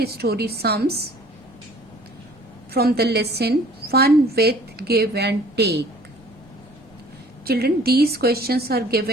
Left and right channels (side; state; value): both; normal; correlation 0.52